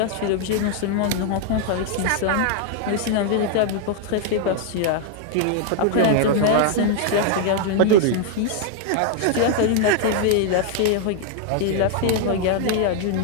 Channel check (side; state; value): both; different; correlation 0.00